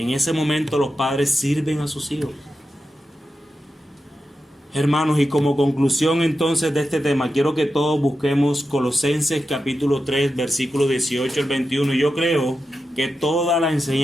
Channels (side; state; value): both; normal; correlation 0.90